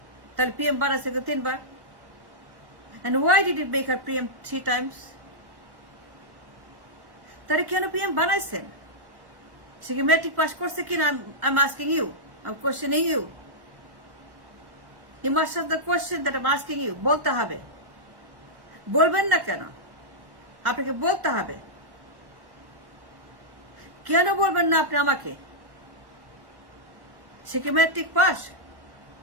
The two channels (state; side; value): late; left; 1.1 ms